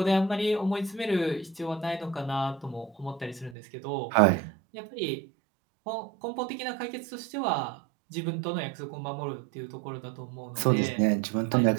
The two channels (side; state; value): left; drops out; at 3.6 s